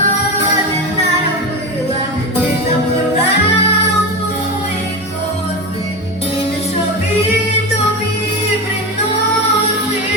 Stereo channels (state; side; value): normal; both; correlation 0.22